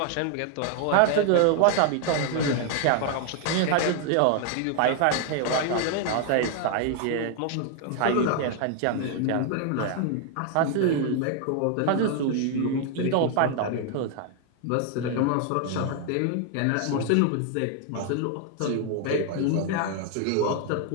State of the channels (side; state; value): both; different; correlation 0.00